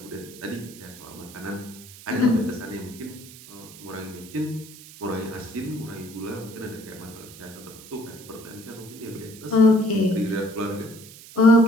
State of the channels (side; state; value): right; noise; hiss, 18 dB below the sound